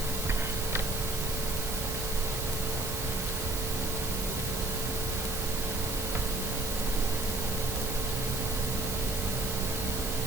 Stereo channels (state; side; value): noise; right; hiss, 4 dB below the sound